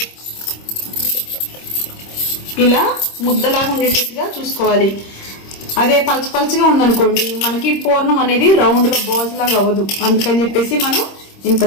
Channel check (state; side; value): late; right; 26 ms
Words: ఇలా ముద్దలాగా ఉండేటట్టుగా చూసుకోవాలి. అదే పలచగా ఉందనుకోండి మనకి పూర్ణం అనేది రౌండ్ గా బోజ్ లాగా అవ్వదు. అందుకని చెప్పేసి మనం ఇంత